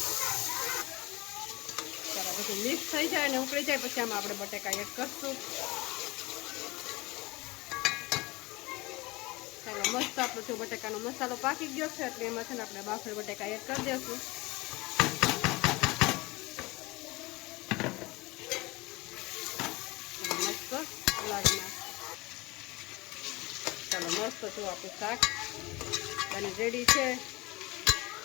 ચાલો બધું મિક્સ થઈ જાય અને ઉકળી જાય પછી આમાં આપણે બટાકા એડ કરશું. ચાલો મસ્ત આપણો જો બટાકાનો મસાલો પાકી ગયો છે એટલે એમાં છે ને આપણે બાફેલ બટાકા એડ કરી દઈશું. મસ્ત લાગી નાખ. ચાલો મસ્ત જો આપણું શાક બની રેડી છે.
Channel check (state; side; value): quieter; right; 22.5 dB